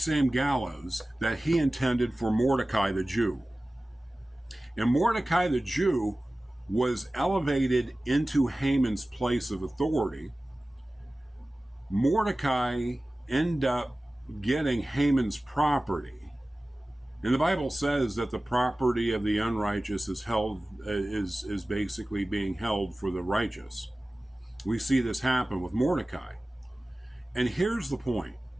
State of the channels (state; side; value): normal; both; correlation 0.97